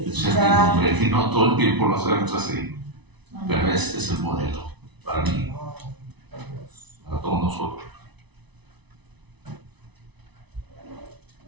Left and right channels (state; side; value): late; left; 1.0 ms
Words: servidumbre, que no todo el tiempo lo hacemos así, pero este es el modelo para mí, para todos nosotros.